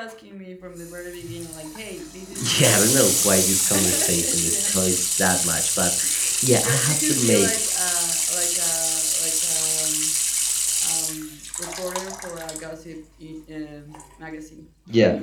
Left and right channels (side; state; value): both; identical; correlation 1.00